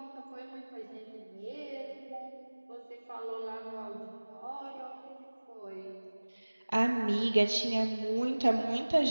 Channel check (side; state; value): both; inverted; correlation -1.00